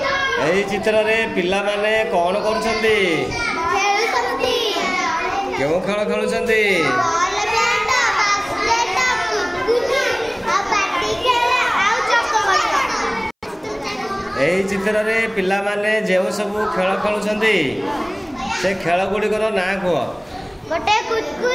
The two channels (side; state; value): both; identical; correlation 1.00